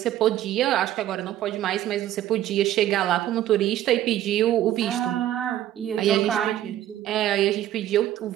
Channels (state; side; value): quieter; left; 12.7 dB